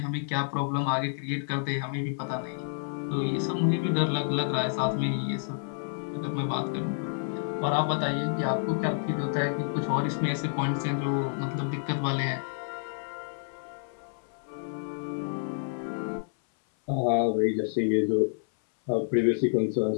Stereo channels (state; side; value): silent; right; 59 dB below the other